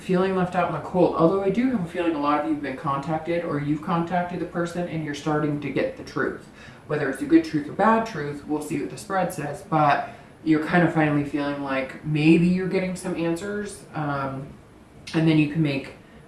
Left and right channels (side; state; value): both; identical; correlation 1.00